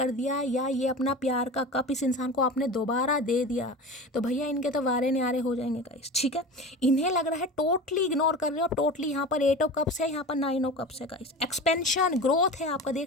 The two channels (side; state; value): both; normal; correlation 0.32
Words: दिया, या ये अपना प्यार का कप इस इंसान को आपने दोबारा दे दिया, तो भैया इनके तो वारे न्यारे हो जाएंगे गाइस, ठीक है। इन्हें लग रहा है टोटली इग्नोर कर रहे हो टोटली। यहाँ पर 8 ऑफ कप्स है, यहाँ पर 9 ऑफ कप्स है गाइस। एक्सपेंशन ग्रोथ है आपका।